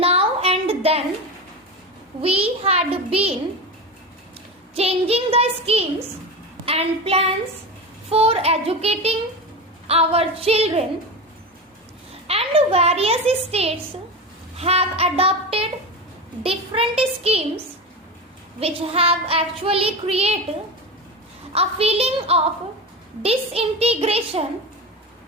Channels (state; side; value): normal; both; correlation 0.23